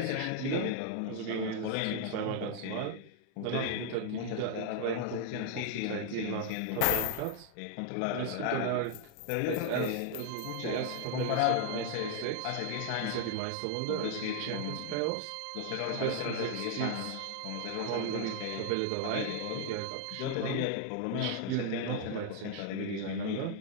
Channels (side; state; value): both; different; correlation 0.00